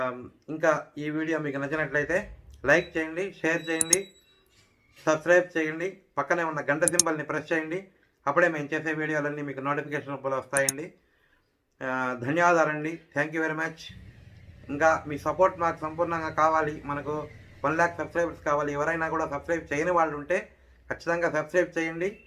ఇంకా ఈ వీడియో మీకు నచ్చినట్లయితే లైక్ చేయండి, షేర్ చేయండి, సబ్స్క్రైబ్ చేయండి. పక్కనే ఉన్న గంట సింబల్ని ప్రెస్ చేయండి. అప్పుడే మేము చేసే వీడియోలన్నీ మీకు నోటిఫికేషన్ రూపంలో వస్తాయండి. ధన్యవాదాలండి. Thank you very much. ఇంకా మీ సపోర్ట్ మాకు సంపూర్ణంగా కావాలి. మనకు 1,00,000 సబ్స్క్రైబర్స్ కావాలి. ఎవరైనా కూడా సబ్స్క్రైబ్ చేయని వాళ్ళు ఉంటే ఖచ్చితంగా సబ్స్క్రైబ్ చేయండి.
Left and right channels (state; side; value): identical; both; correlation 1.00